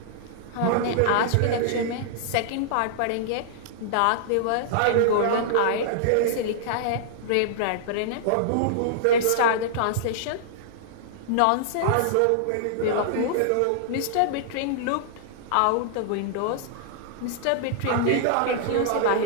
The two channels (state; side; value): different; both; correlation -0.01